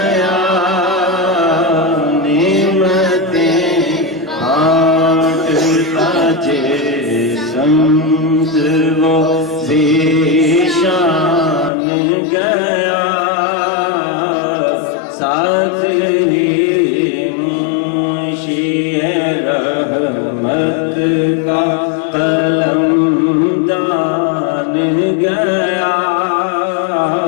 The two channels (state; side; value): drops out; right; at 11.7 s